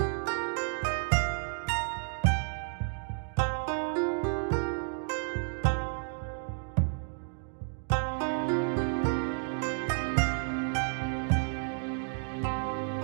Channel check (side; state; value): left; silent; 57 dB below the other